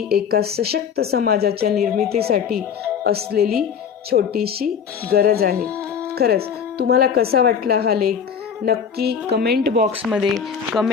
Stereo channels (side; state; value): right; quieter; 7.2 dB